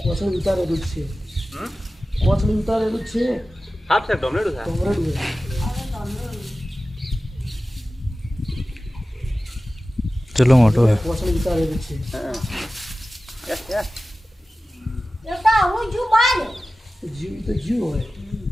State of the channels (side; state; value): both; normal; correlation 0.95